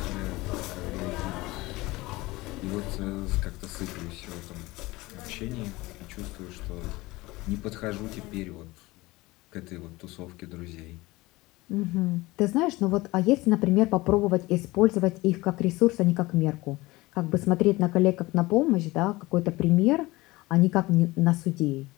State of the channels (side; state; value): right; quieter; 20.7 dB